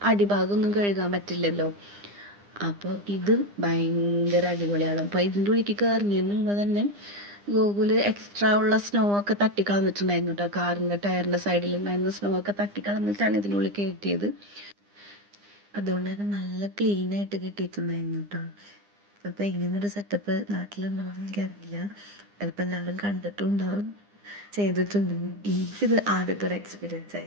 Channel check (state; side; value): late; left; 9.9 ms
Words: അടിഭാഗമൊന്നും കഴുകാൻ പറ്റില്ലല്ലോ. അപ്പോൾ ഇത് ഭയങ്കര അടിപൊളിയാണ്. അപ്പോൾ ഇതിൻ്റെ ഉള്ളിലേക്ക് കയറുന്നതിന് മുമ്പ് തന്നെ ഗൂഗിൾ എക്സ്ട്രാ ഉള്ള സ്നോ ഒക്കെ തട്ടിക്കളഞ്ഞിട്ടുണ്ടായിരുന്നു കേട്ടോ. കാറിൻ്റെ ടയറിൻ്റെ സൈഡിലുണ്ടായിരുന്ന സ്നോ ഒക്കെ തട്ടിക്കളഞ്ഞിട്ടാണ് ഇതിനുള്ളിൽ കയറ്റിയത്. അതുകൊണ്ട് തന്നെ നല്ല ക്ലീനായിട്ട് കിട്ടിയിട്ടുണ്ടായിരുന്നു കേട്ടോ. അപ്പോൾ ഇങ്ങനൊരു സെറ്റപ്പ് നാട്ടിലുണ്ടാവും എനിക്കറിയില്ല. ചിലപ്പോൾ എല്ലാവരും കണ്ടിട്ടുണ്ടാവും, ചെയ്തിട്ടുണ്ടാവും. എനിക്കിത് ആദ്യത്തെ ഒരു എക്സ്പീരിയൻസ്